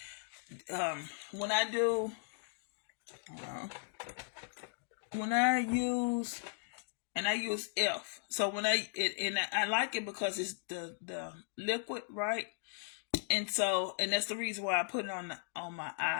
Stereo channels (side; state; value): right; silent; digital silence